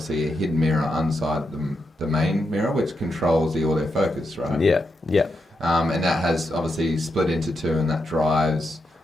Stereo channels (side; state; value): both; normal; correlation 0.84